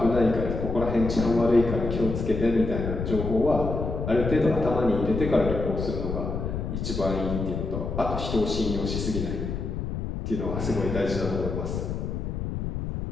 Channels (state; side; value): noise; left; rumble, 3 dB below the sound